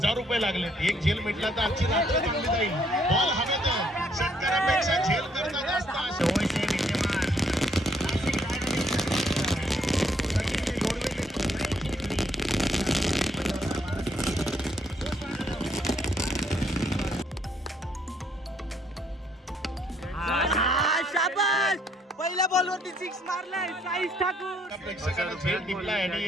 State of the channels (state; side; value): normal; both; correlation 0.69